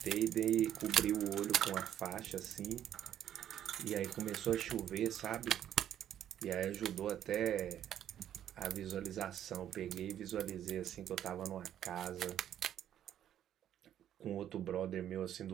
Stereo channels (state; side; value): quieter; left; 10.7 dB